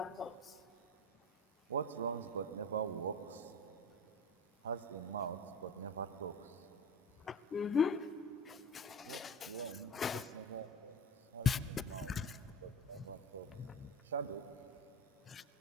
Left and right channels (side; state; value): both; normal; correlation 0.31